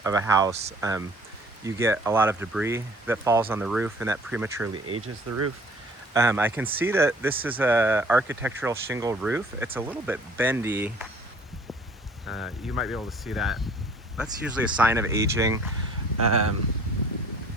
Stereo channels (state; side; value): normal; both; correlation 0.54